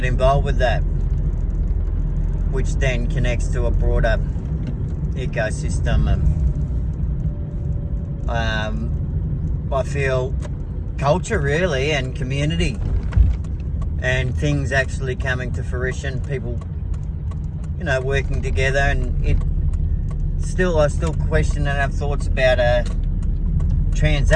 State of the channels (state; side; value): identical; both; correlation 1.00